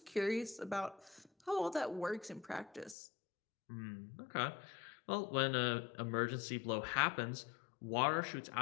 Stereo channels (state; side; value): drops out; right; at 3.0 s